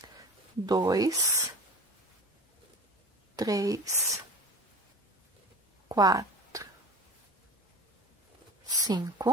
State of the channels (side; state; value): both; normal; correlation 0.36